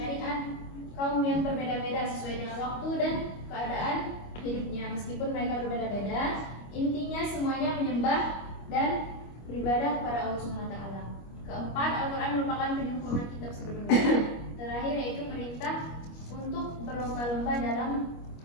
kaum yang berbeda-beda sesuai dengan waktu dan keadaan hidupnya. Meskipun mereka berbeda-beda, intinya semuanya menyembah dan beribadah kepada Allah Subhanahu wa taala. Keempat, Al-Quran merupakan penyempurna kitab sebelumnya. Terakhir yaitu perintah untuk berlomba-lomba dalam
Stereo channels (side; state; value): right; late; 25 ms